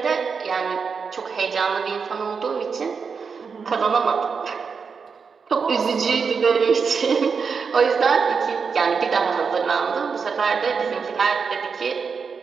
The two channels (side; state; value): left; quieter; 5.6 dB